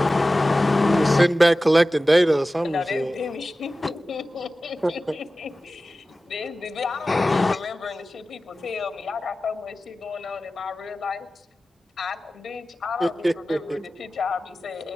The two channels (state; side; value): normal; both; correlation 0.95